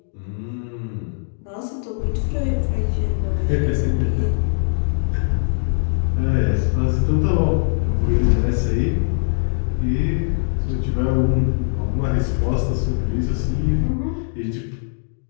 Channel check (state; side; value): silent; right; digital silence